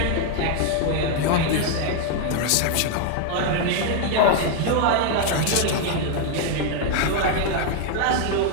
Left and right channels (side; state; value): both; different; correlation 0.00